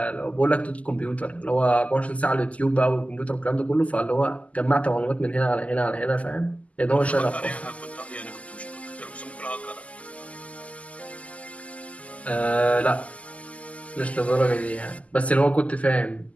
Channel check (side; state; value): right; late; 0.068 ms